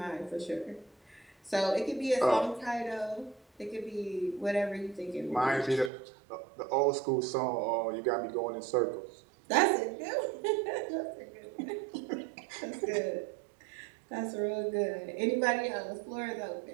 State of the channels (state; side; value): drops out; left; at 5.9 s